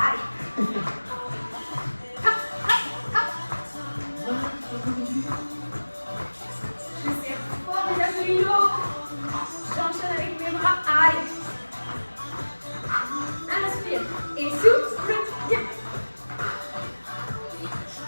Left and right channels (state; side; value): inverted; both; correlation -1.00